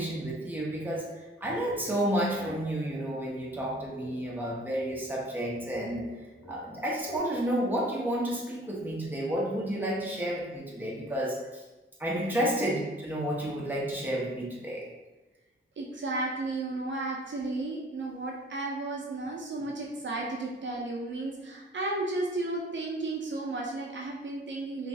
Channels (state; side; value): normal; both; correlation 0.51